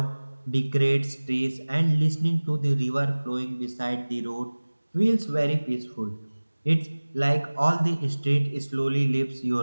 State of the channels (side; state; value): both; inverted; correlation -1.00